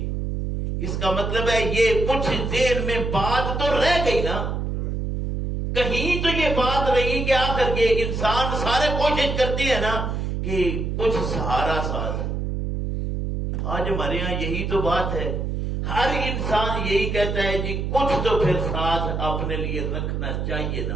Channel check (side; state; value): right; noise; hum, 2 dB below the sound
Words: اس کا مطلب ہے یہ کچھ دیر میں بات تو رہ گئی نا، کہیں تو یہ بات رہی کہ آخر کے انسان سارے کوشش کرتے ہیں نا کہ کچھ سہارا ساتھ. آج ہمارے یہاں یہی تو بات ہے، ہر انسان یہی کہتا ہے جی کچھ تو پھر ساتھ اپنے لیے رکھنا چاہیے